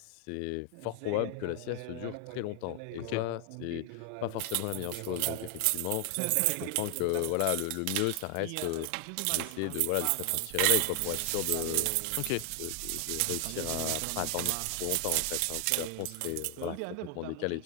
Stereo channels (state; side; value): different; both; correlation 0.00